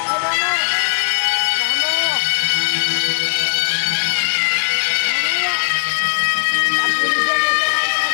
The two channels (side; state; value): right; silent; 64 dB below the other